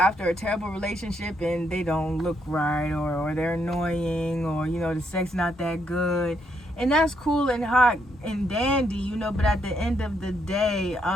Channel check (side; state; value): both; normal; correlation 0.75